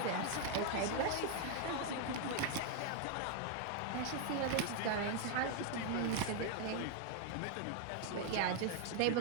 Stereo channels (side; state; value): both; different; correlation 0.00